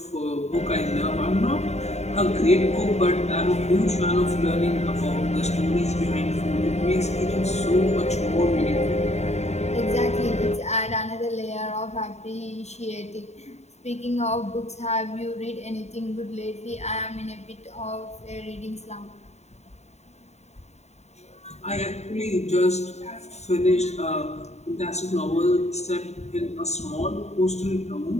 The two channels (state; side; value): late; right; 0.32 ms